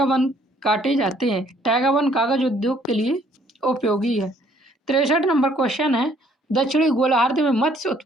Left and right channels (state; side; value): normal; both; correlation 0.63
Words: वन काटे जाते हैं। टैगा वन कागज उद्योग के लिए उपयोगी है। 63 नंबर क्वेश्चन है, दक्षिणी गोलार्ध में मत्स्य